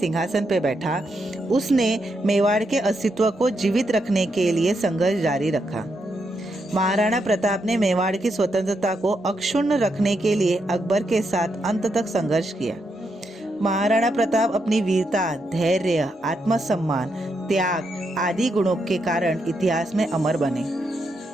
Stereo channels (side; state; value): both; normal; correlation 0.81